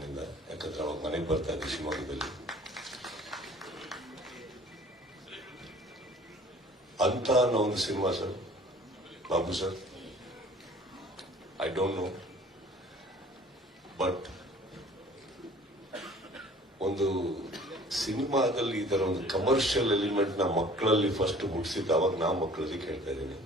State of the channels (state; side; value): normal; both; correlation 0.50